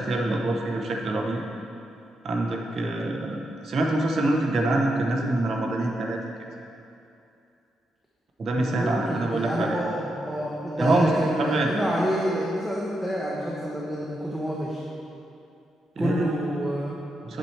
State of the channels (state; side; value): normal; both; correlation 0.84